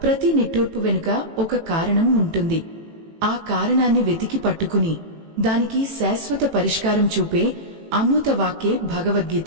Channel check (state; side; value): late; left; 18 ms